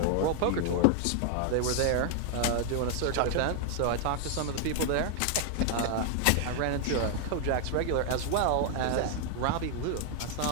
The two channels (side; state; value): both; different; correlation 0.00